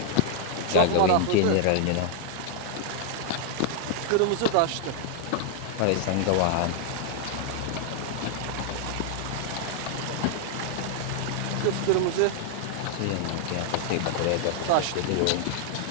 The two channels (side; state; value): both; different; correlation 0.00